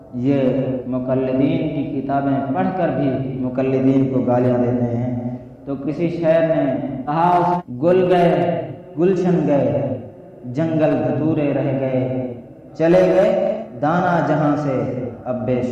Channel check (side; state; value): both; identical; correlation 1.00